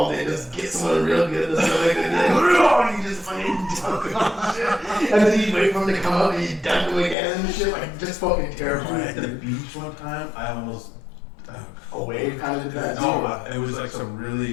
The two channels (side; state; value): right; drops out; at 7.2 s